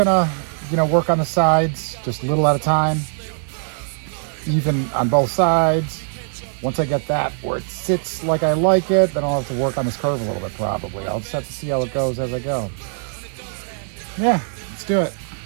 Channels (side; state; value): left; silent; digital silence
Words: work on the sides, just a little at a time. Even on both sides. Once I get that where it sits like I like it, then I'll have to work on this curve a little bit probably. I'll just have to see how it goes as I go. Yeah, let's do it.